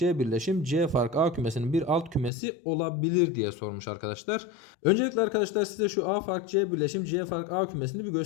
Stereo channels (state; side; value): drops out; right; at 2.3 s